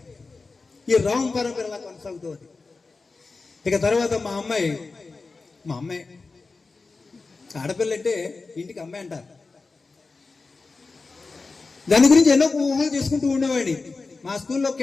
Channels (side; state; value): right; quieter; 4.0 dB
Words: ఈ రామ్ పరంపరలా కొనసాగుతుంది. ఇక తర్వాత మా అమ్మాయి ఆడపిల్ల అంటే ఇంటికి అమ్మాయి అంటారు. దాని గురించి ఎన్నో ఊహలు చేసుకుంటూ ఉండేవాడిని. మా స్కూల్లో